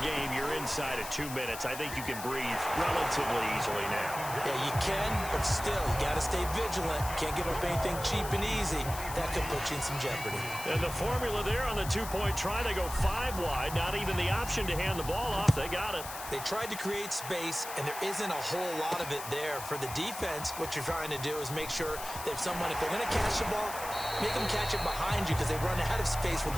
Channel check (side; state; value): left; noise; hiss, 10 dB below the sound